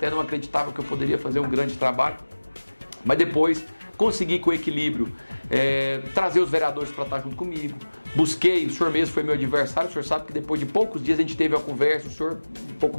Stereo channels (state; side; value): inverted; both; correlation -1.00